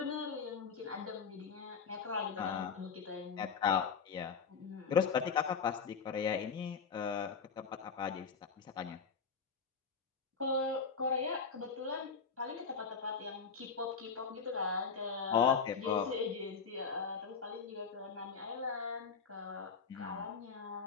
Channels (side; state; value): right; quieter; 5.8 dB